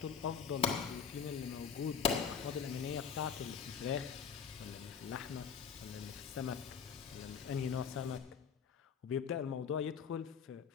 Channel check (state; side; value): quieter; right; 6.8 dB